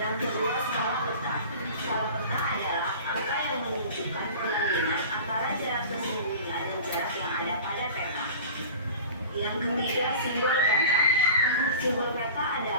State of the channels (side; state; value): both; inverted; correlation -0.40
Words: kedua, skala peta. Skala peta adalah angka yang menunjukkan perbandingan antara jarak sesungguhnya dan jarak yang ada pada peta. Yang ketiga, simbol peta. Simbol peta